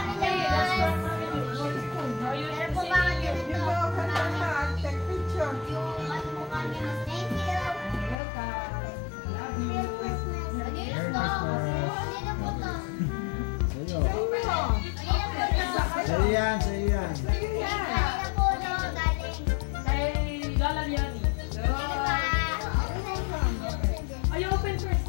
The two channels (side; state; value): right; drops out; at 8.2 s